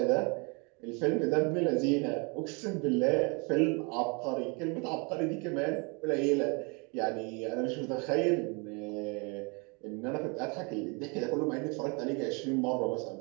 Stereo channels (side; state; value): left; quieter; 32.0 dB